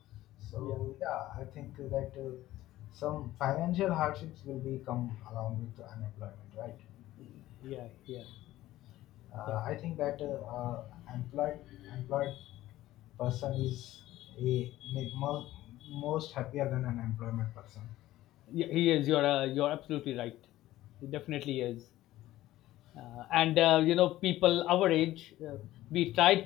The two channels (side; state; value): right; quieter; 15.4 dB